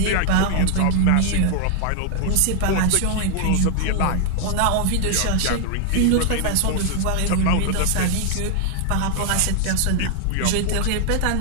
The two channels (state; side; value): different; both; correlation 0.00